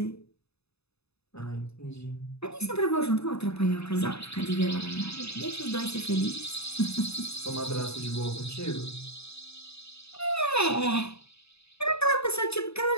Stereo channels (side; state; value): right; late; 0.79 ms